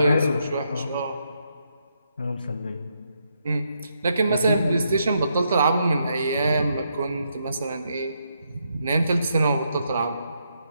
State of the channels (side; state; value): both; inverted; correlation -0.78